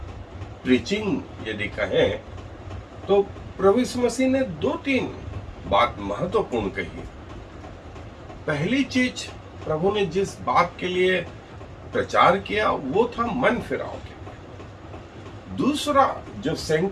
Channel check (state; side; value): identical; both; correlation 1.00